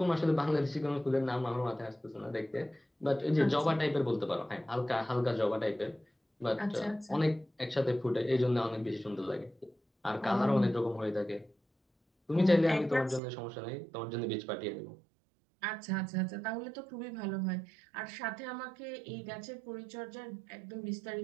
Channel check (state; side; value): drops out; left; at 13.2 s